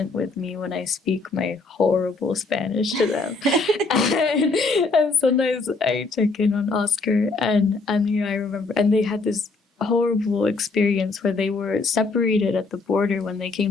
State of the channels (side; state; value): right; quieter; 3.8 dB